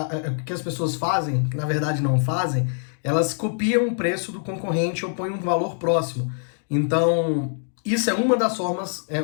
que as pessoas fazem, que na verdade não fazem, elas copiam o preço do concorrente ou põem um valor próximo. Então, isso é uma das formas, é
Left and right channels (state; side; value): silent; right; digital silence